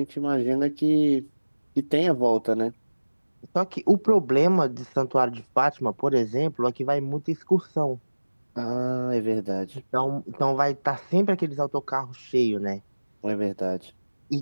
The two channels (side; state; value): both; inverted; correlation -1.00